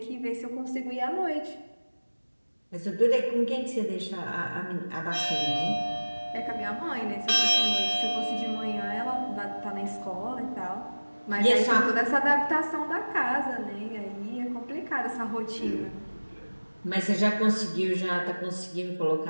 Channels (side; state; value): both; inverted; correlation -1.00